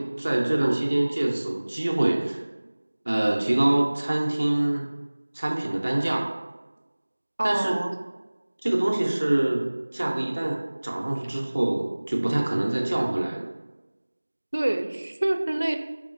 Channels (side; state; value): both; inverted; correlation -1.00